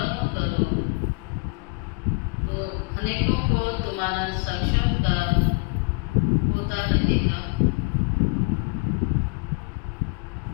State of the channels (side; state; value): right; quieter; 30.3 dB